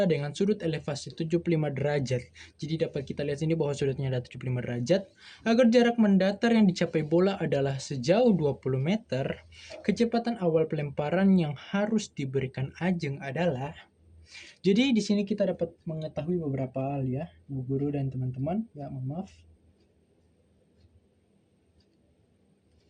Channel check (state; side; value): identical; both; correlation 1.00